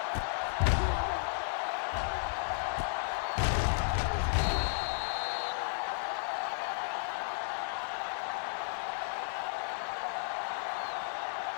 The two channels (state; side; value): silent; right; digital silence